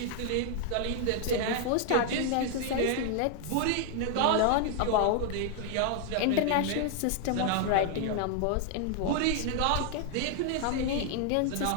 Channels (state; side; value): different; both; correlation 0.00